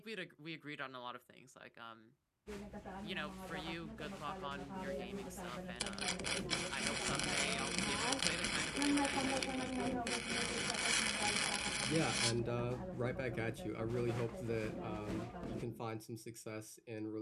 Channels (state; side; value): identical; both; correlation 1.00